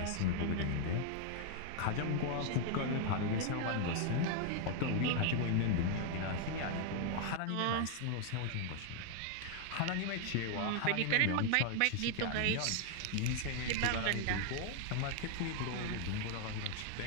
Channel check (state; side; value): different; both; correlation 0.00